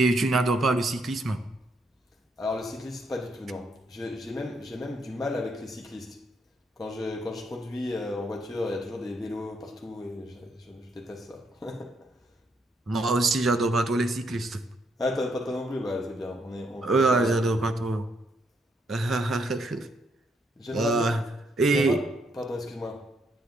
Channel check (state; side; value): normal; both; correlation 0.74